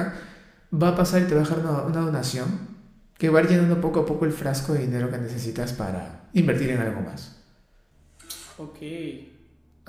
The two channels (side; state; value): both; identical; correlation 1.00